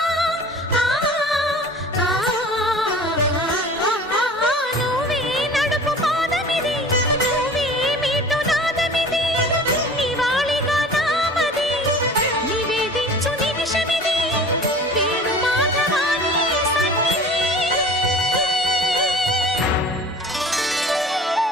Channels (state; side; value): normal; both; correlation 0.42